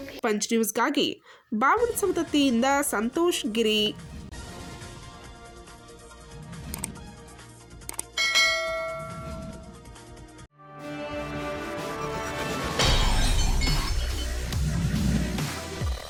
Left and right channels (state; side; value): identical; both; correlation 1.00